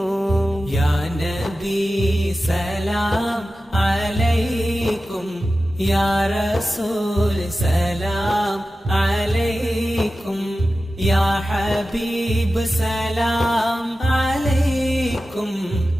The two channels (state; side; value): normal; both; correlation 0.94